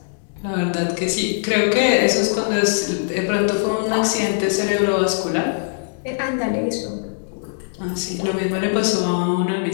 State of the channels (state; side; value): silent; right; 65 dB below the other